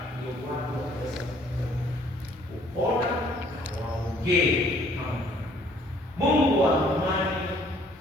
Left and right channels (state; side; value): normal; both; correlation 0.60